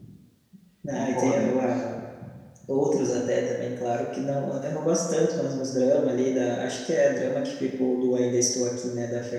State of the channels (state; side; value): identical; both; correlation 1.00